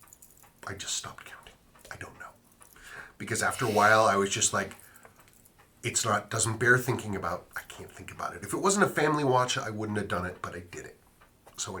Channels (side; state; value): both; identical; correlation 1.00